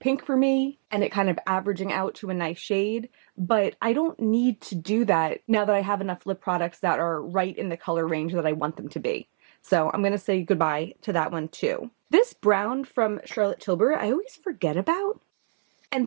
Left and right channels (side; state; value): left; silent; 62 dB below the other